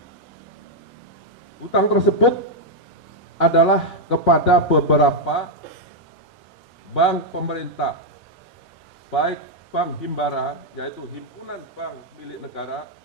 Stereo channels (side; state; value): both; normal; correlation -0.01